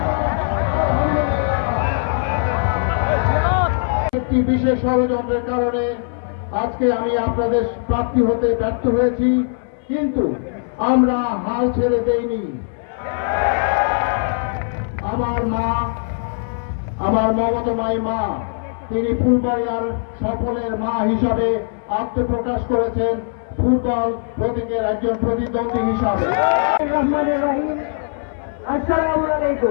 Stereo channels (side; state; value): right; silent; 58 dB below the other